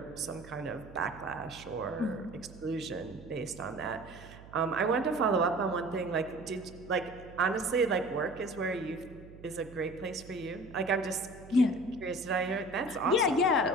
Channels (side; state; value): right; noise; hum, 18 dB below the sound